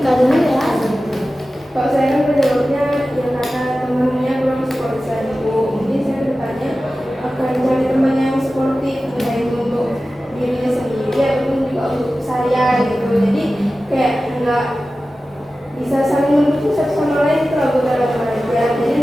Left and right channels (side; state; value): both; normal; correlation 0.95